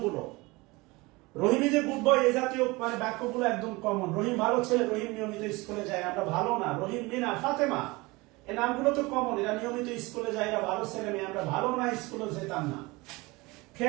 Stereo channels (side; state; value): left; quieter; 23.4 dB